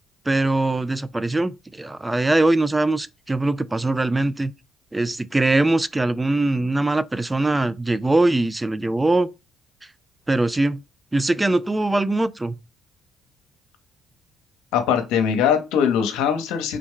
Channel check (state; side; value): normal; both; correlation 0.85